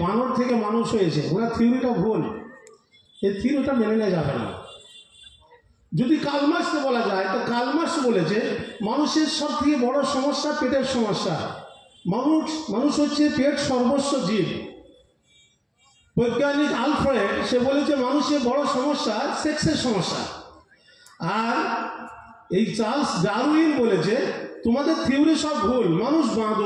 বানর থেকে মানুষ হয়েছে, ওনার থিওরিটা ভুল। এই থিওরিটা মেনে নেওয়া যাবে না। যদি কার্ল মার্ক্সকে বলা যায়, তো কার্ল মার্ক্স বলেছে মানুষের সব থেকে বড় সমস্যা পেটের সমস্যা। মানুষ হচ্ছে পেট সর্বস্ব জীব। বৈজ্ঞানিক আলফ্রেড, সে বলেছে মানুষের বড় সমস্যা সেক্সের সমস্যা। আর এই চার্লস ডারউইন বলেছে তোমাদের থিওরি সব ভুল, মানুষ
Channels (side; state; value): both; identical; correlation 1.00